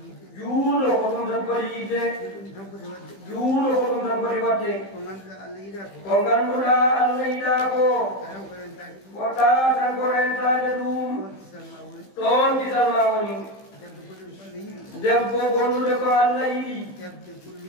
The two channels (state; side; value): late; right; 15 ms